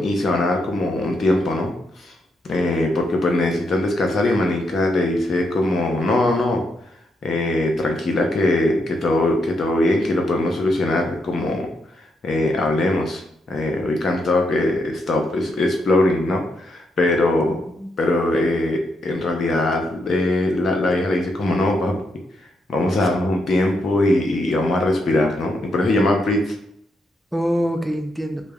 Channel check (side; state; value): both; normal; correlation 0.80